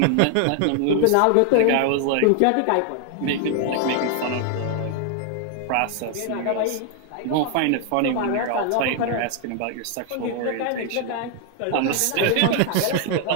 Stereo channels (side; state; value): both; different; correlation 0.00